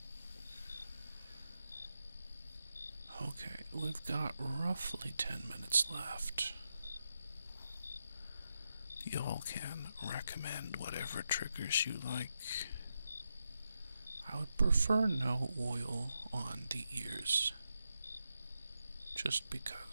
Okay, we've got roughly 10 minutes left. Y'all can recommend whatever triggers you like. I would prefer no oil on the ears. Just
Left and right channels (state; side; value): inverted; both; correlation -0.86